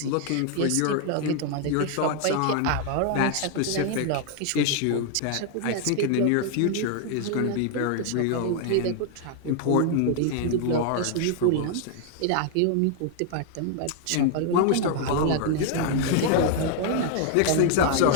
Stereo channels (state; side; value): different; both; correlation 0.00